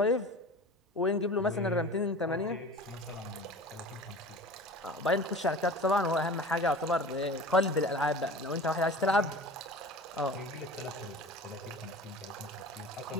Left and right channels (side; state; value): both; normal; correlation 0.38